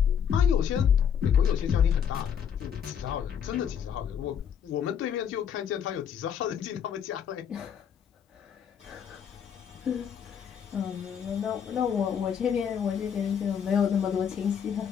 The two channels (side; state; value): right; quieter; 8.1 dB